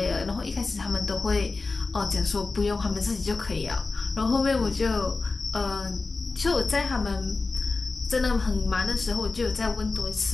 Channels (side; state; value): right; quieter; 3.8 dB